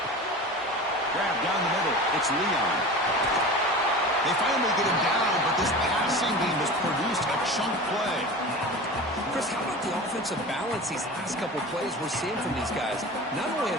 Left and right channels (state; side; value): normal; both; correlation 0.33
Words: Grab down the middle. It's Leon. They finally get him down, but this passing game has produced a chunk play. Chris, how about the offensive balance these last couple plays we're seeing from these guys? Not only are